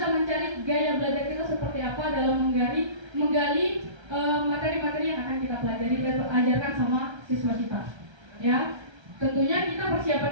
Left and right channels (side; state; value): left; late; 1.3 ms